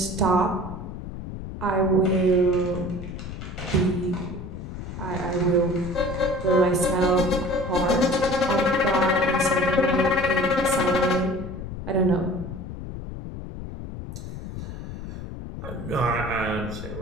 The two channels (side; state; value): left; noise; rumble, 9 dB below the sound